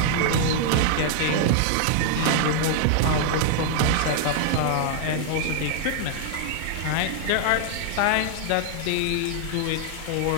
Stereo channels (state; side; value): different; both; correlation 0.00